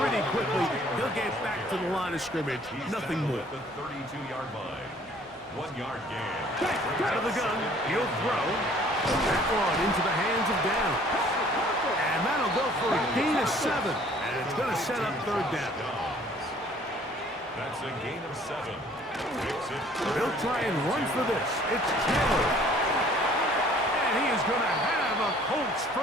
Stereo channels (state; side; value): normal; both; correlation 0.56